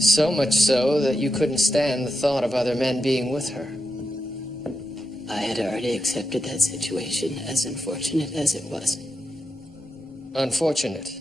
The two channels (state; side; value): normal; both; correlation 0.87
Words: much so that you couldn't stand the thought of other men being with her. I had already accepted that situation, as unfortunate as it was. Unfortunate.